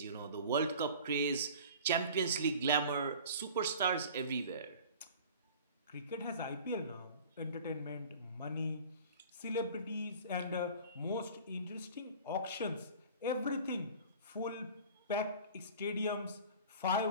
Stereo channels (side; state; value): both; inverted; correlation -0.43